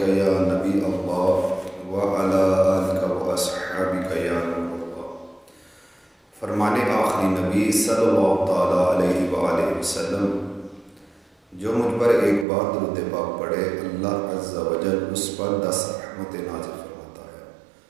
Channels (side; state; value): left; drops out; at 12.5 s